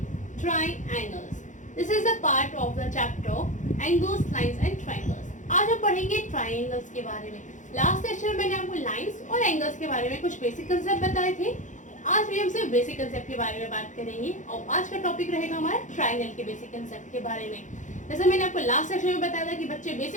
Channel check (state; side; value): late; right; 0.36 ms